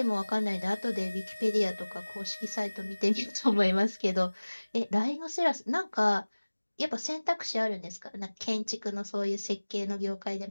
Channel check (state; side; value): inverted; both; correlation -1.00